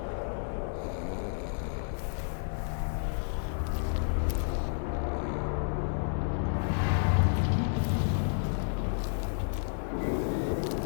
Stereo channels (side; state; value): right; silent; digital silence